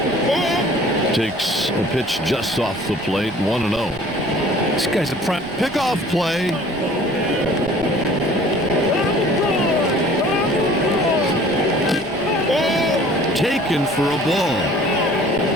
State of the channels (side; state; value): both; normal; correlation 0.50